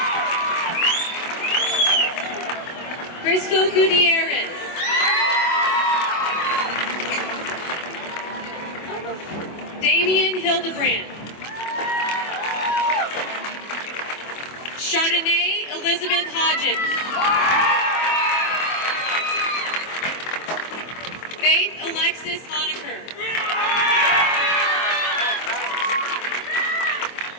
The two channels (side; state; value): right; late; 24 ms